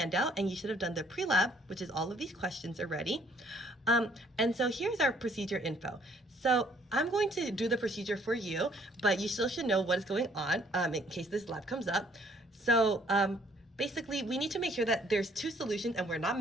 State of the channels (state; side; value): normal; both; correlation 0.62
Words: and you should have done the pre-lab, which is all of these questions already. And so here's our procedure info. So I'm going to do the procedure for you, but you still should know what is going on in case this lab comes up. So basically, we need to make sure that there's two solutions and we're not